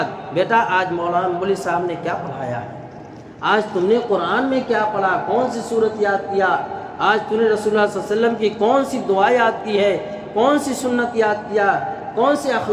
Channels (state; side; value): identical; both; correlation 1.00